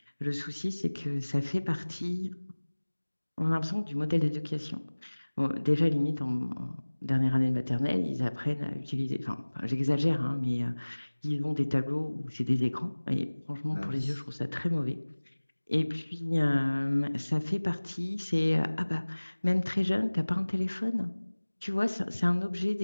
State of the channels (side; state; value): both; inverted; correlation -1.00